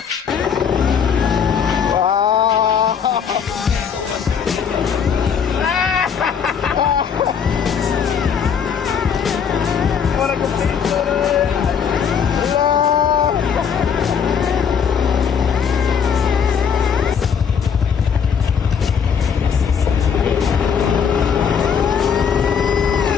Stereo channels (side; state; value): right; quieter; 7.0 dB